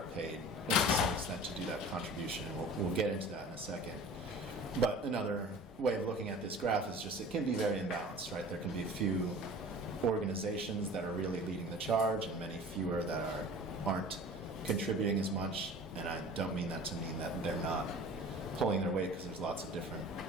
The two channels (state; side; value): normal; both; correlation 0.42